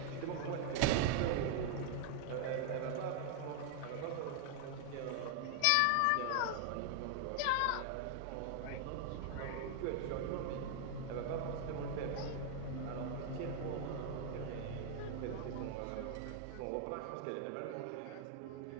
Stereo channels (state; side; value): different; both; correlation 0.00